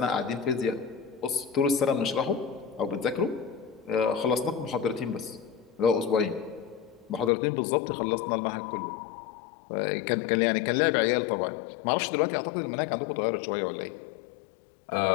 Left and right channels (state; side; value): drops out; right; at 7.3 s